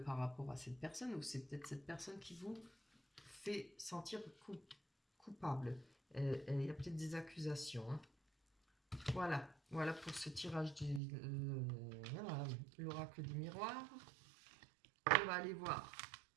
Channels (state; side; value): drops out; left; at 11.0 s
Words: par rapport à cette personne, ou c'est peut-être cette personne qui vous fait sentir coupable. Il y a peut-être des accusations, hein. Voilà pour ce tirage de voilà, l'oracle du miroir. On va aller voir